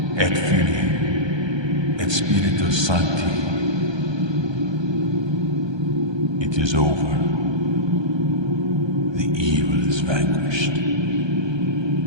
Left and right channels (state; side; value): late; left; 1.2 ms